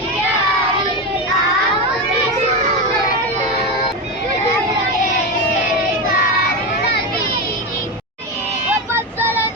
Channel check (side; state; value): both; normal; correlation 0.16